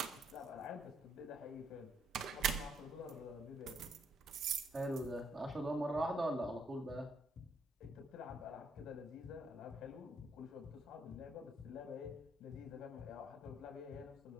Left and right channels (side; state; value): both; normal; correlation 0.71